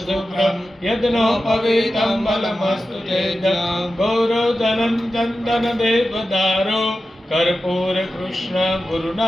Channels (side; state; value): both; normal; correlation 0.92